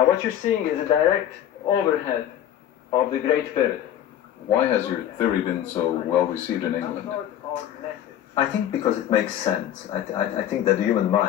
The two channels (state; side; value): quieter; right; 11.1 dB